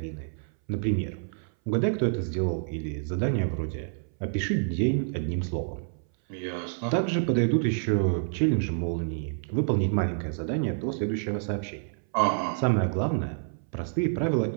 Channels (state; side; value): silent; left; 59 dB below the other